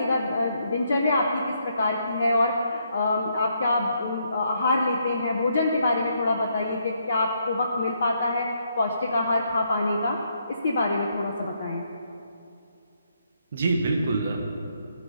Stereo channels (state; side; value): inverted; both; correlation -0.75